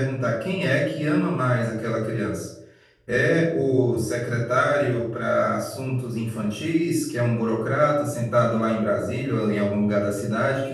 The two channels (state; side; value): identical; both; correlation 1.00